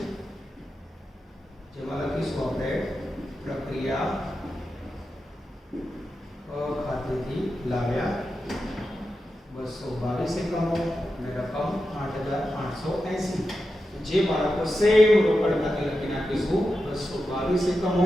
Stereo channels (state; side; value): normal; both; correlation 0.90